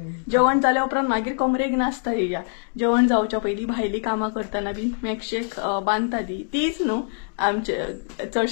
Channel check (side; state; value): right; silent; digital silence